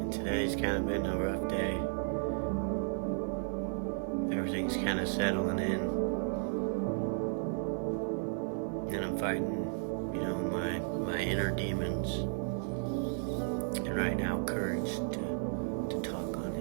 today's kind of been a rough day. Everything's kind of settling in. And I'm fighting, my inner demons. And right now, courage to talk on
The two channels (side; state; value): left; silent; digital silence